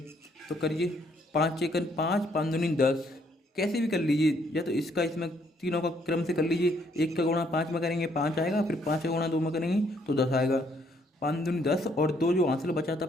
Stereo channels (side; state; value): both; normal; correlation 0.69